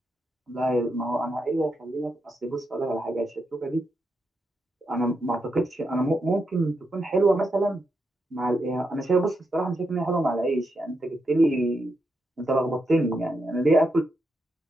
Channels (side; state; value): both; normal; correlation 0.83